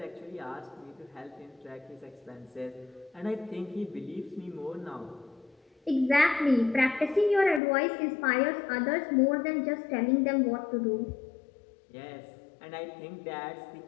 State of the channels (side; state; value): right; drops out; at 7.6 s